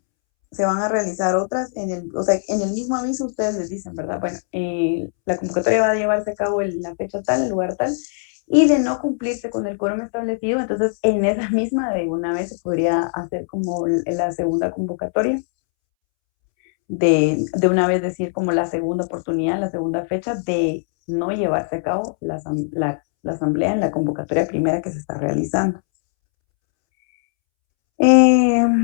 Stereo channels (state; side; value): silent; right; 65 dB below the other